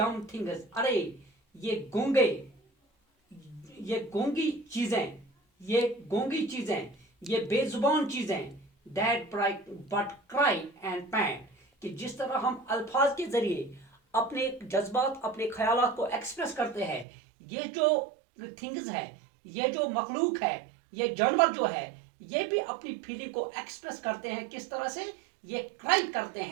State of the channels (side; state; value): left; drops out; at 17.1 s